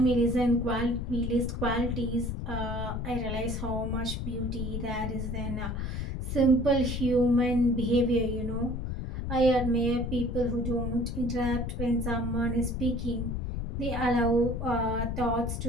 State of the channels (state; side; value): noise; left; rumble, 3 dB below the sound